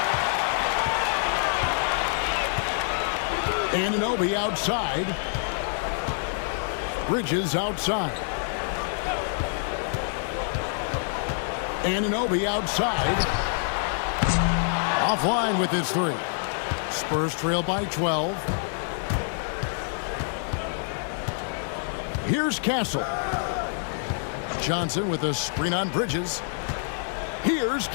Anunoby outside. Bridges outside. Anunoby outside. Offline with his 3. Spurs trail by 12. Here's Castle. Johnson with a screen on Bridges. Here's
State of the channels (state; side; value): silent; right; digital silence